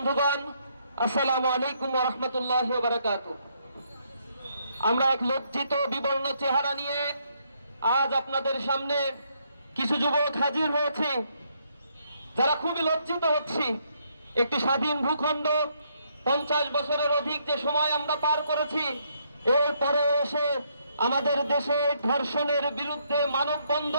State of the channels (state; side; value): inverted; both; correlation -0.73